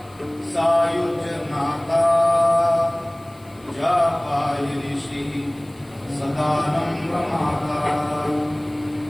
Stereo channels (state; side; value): noise; left; hiss, 29 dB below the sound